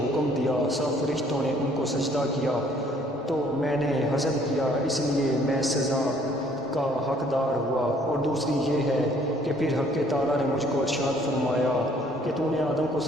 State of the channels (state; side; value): normal; both; correlation 0.60